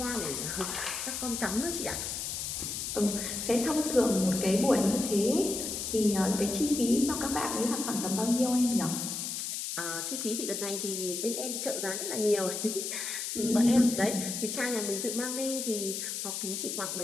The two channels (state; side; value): noise; left; hiss, 4 dB below the sound